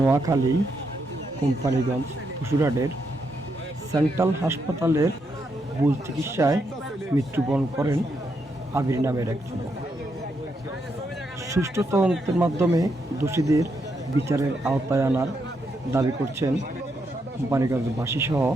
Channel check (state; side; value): normal; both; correlation 0.80